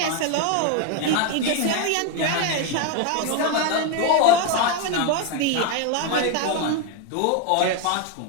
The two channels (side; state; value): both; different; correlation 0.01